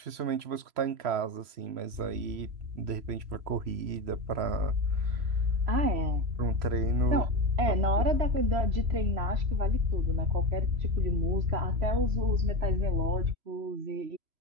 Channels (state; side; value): late; left; 3.0 ms